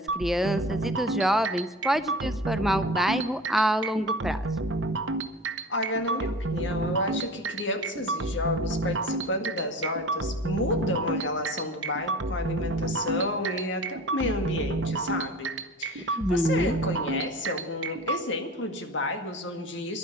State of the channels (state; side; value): normal; both; correlation 0.36